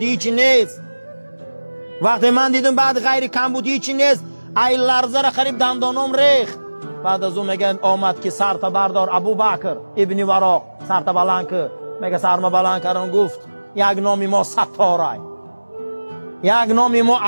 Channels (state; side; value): inverted; both; correlation -1.00